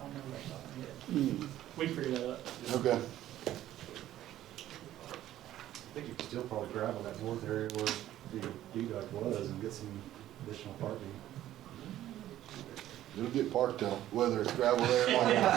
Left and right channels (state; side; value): quieter; left; 13.2 dB